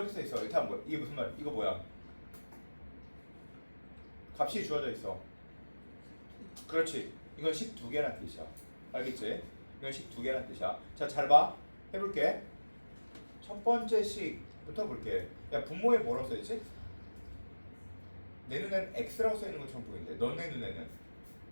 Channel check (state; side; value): inverted; both; correlation -1.00